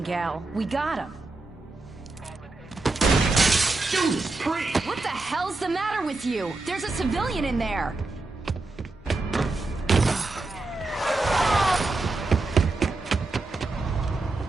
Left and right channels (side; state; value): left; quieter; 3.3 dB